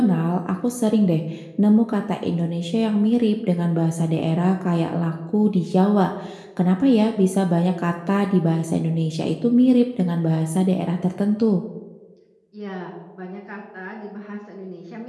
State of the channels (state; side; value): identical; both; correlation 1.00